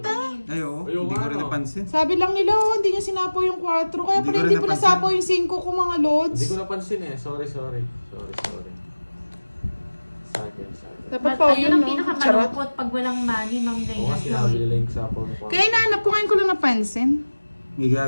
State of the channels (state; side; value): inverted; both; correlation -1.00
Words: Ay, oo. Ayoko Hindi ko rin ano. napansin. Sabi lang nila, oh, hindi niya sinapo yung 4. Kaya Hindi pala ko hindi rin po napansin. nasapo yung 5 ko mga lods. Hindi ko napansin eh. Sorry. Sa akin. Dapat But pa ayun yun, ang no? Charot. pinakamalungkot pag walang money, Ma'am Oo Gaya. nga sinabi nila yung sapaw na Kaya inaanap ko ngayon ko lang napansin. May